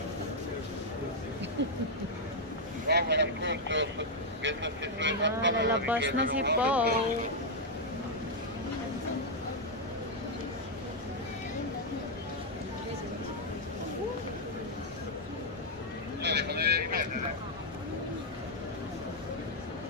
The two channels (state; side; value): normal; both; correlation -0.03